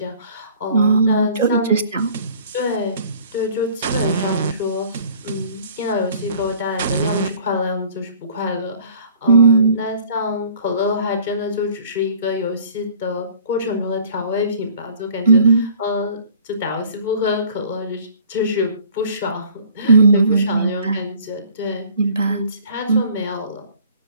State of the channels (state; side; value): inverted; both; correlation -0.53